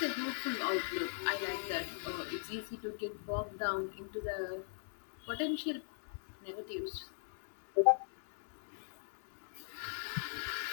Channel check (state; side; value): silent; right; digital silence